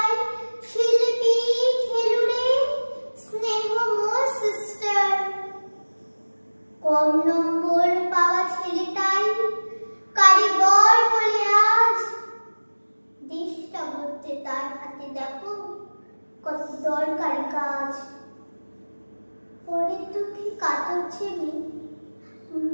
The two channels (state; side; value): inverted; both; correlation -1.00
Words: শিল্পী, খেলুড়ে, স্নেহময় সিস্টার। কম নম্বর পাওয়া ছেলেটাই কারিগর বলে আজ দেশটা গড়তে তার হাতে দেখো কত দরকারি কাজ। পরের দুঃখে কাতর ছেলে